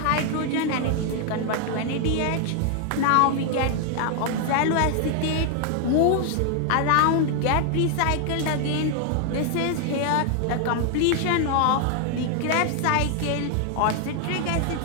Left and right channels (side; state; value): both; different; correlation 0.00